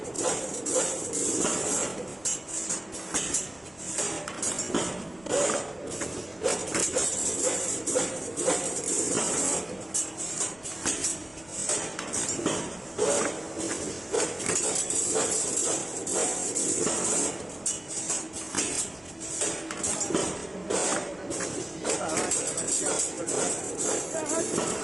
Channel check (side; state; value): left; noise; rumble, 26 dB below the sound